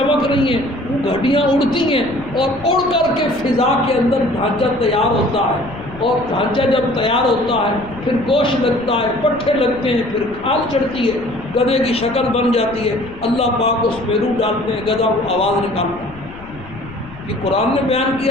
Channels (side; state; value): left; noise; rumble, 18 dB below the sound